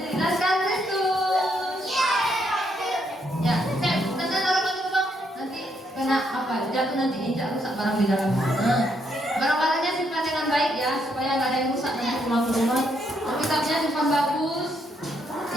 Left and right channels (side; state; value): both; normal; correlation 0.75